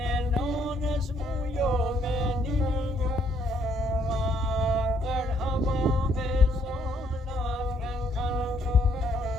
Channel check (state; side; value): normal; both; correlation 0.68